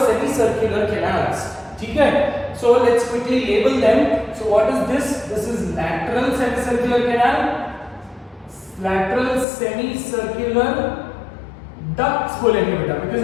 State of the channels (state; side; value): drops out; right; at 9.5 s